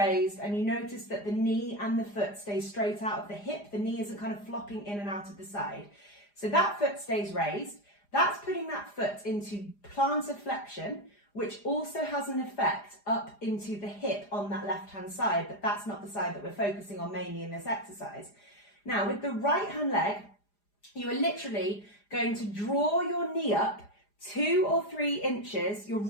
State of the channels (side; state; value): right; late; 4.9 ms